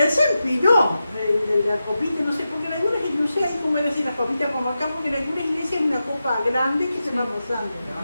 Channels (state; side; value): inverted; both; correlation -0.91